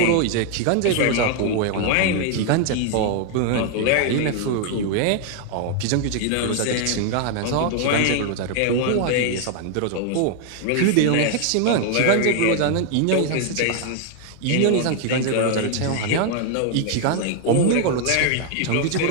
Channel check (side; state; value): both; different; correlation 0.00